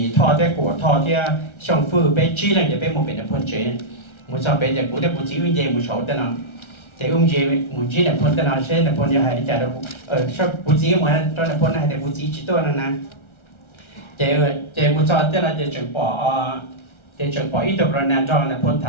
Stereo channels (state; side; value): late; right; 1.3 ms